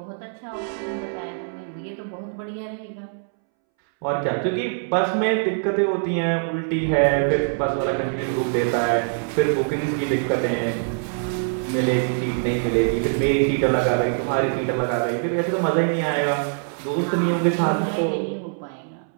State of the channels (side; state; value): left; silent; 63 dB below the other